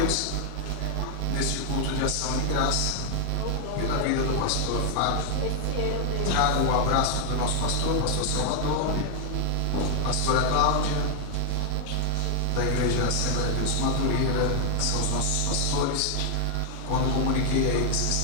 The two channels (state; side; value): different; both; correlation 0.00